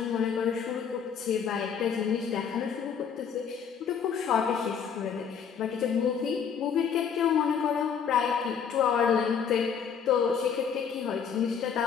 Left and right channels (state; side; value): quieter; right; 7.1 dB